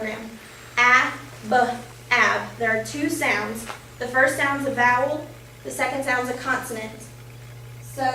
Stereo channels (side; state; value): both; identical; correlation 1.00